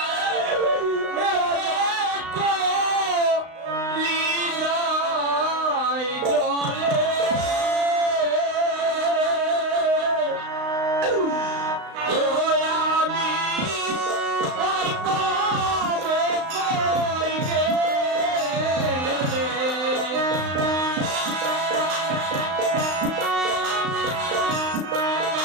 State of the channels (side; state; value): left; late; 35 ms